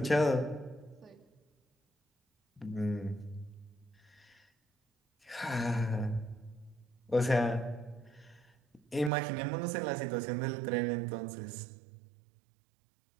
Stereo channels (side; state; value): left; drops out; at 9.1 s